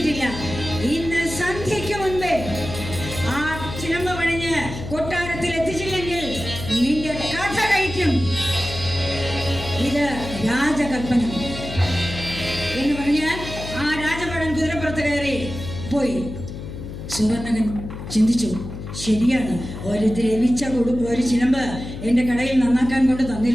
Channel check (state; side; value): noise; left; hum, 9 dB below the sound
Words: ഇന്ന് സന്ധ്യയ്ക്ക് മുൻപേ ആ ചിലമ്പ് പണിഞ്ഞ് കൊട്ടാരത്തിൽ എത്തിച്ചില്ലെങ്കിൽ നിന്റെ കഥ കഴിക്കും. ഇത് രാജകൽപ്പന എന്ന് പറഞ്ഞാൽ ആ രാജഭടൻ കുതിരപ്പുറത്ത് കയറി പോയി. സുവർണകൻ ചിന്തിച്ചു, ശരിയാണ്, ഒരു ദ്രവിച്ച ഒരു ചിലമ്പ് എൻ്റെ കടയിൽ നന്നാക്കാൻ കൊണ്ട്